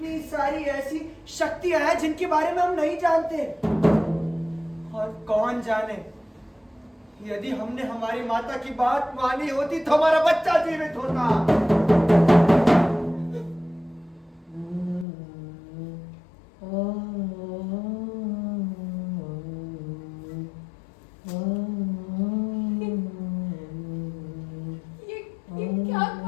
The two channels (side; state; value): right; drops out; at 15.1 s